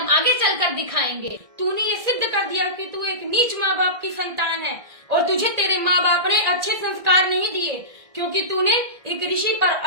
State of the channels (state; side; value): late; left; 1.8 ms